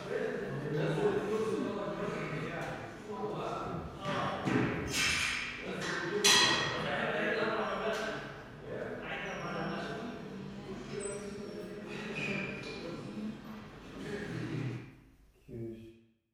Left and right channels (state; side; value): identical; both; correlation 1.00